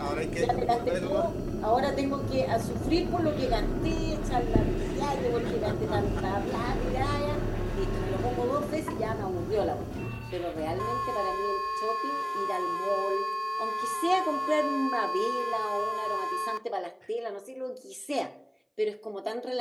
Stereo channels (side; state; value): both; identical; correlation 1.00